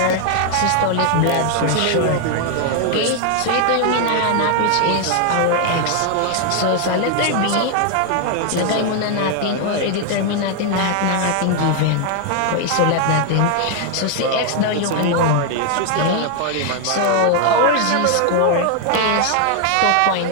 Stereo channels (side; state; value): both; different; correlation 0.00